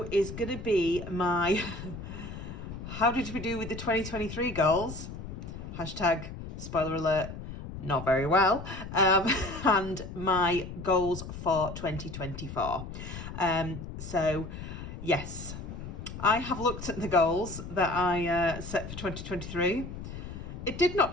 is going to be my how did we do with the 2023 goals? Hashtag spoiler alert, not very well. And my goals for 2024. So yes, I have looked at the goals that I set for 2023. It did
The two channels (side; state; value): left; noise; rumble, 10 dB below the sound